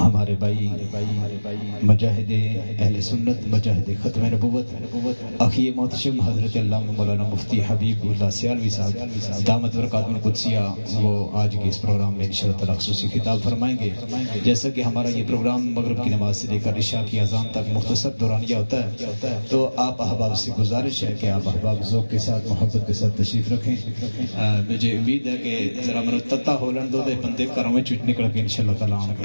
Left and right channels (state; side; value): inverted; both; correlation -1.00